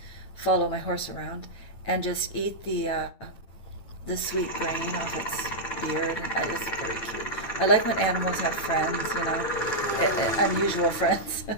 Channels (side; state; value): right; late; 9.2 ms